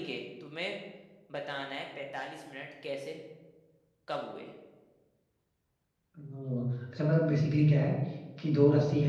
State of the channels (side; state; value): both; identical; correlation 1.00